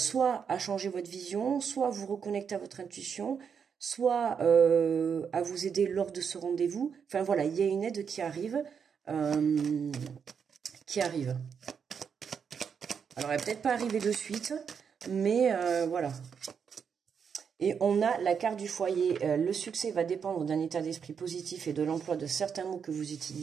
à changer votre vision, soit à vous reconnecter à votre intuition, soit à vous aider lors de ce rendez-vous. Enfin voilà, il y a une aide qui arrive. Alors, elle va peut-être pas arriver de suite, mais voilà. Et on a la carte du foyer. Le succès va dépendre d'un état d'esprit positif et de l'emploi de certains mots que vous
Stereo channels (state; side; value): quieter; left; 6.8 dB